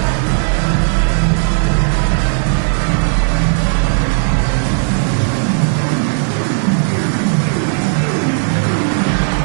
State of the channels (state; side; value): silent; left; 62 dB below the other